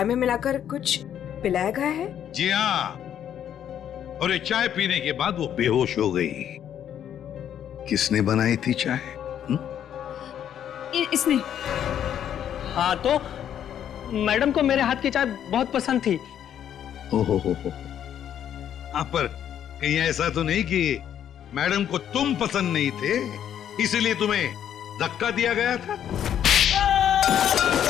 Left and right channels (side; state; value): right; quieter; 9.8 dB